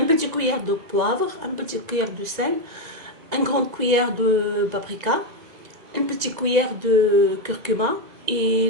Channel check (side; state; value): left; late; 1.9 ms